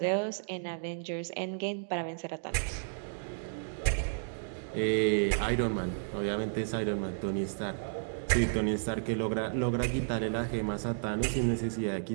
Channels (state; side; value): silent; left; digital silence